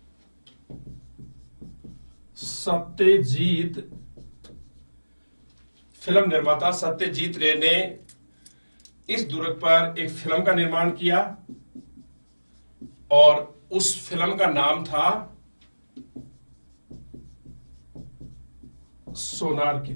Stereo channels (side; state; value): both; inverted; correlation -1.00